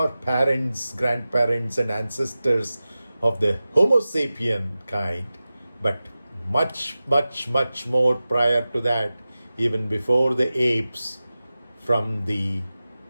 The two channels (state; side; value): inverted; both; correlation -0.95